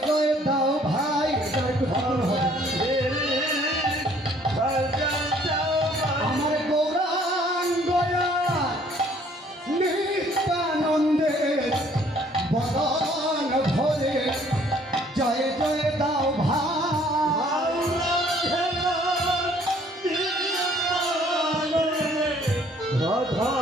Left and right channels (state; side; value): normal; both; correlation 0.60